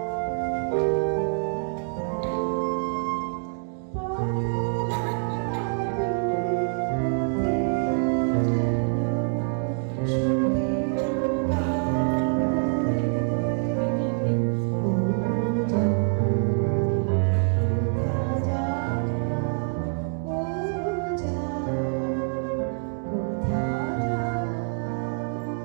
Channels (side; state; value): left; silent; 61 dB below the other